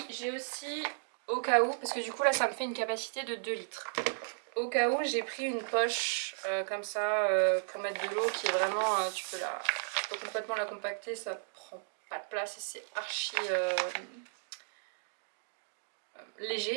j'ai aussi au cas où, parce que du coup là ça me fait une capacité de 2 litres. Au cas où j'ai pris une poche comme ça pour mettre de l'eau qui est vraiment, tu peux complètement la compacter, ça prend pas de place et c'est archi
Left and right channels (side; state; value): left; silent; digital silence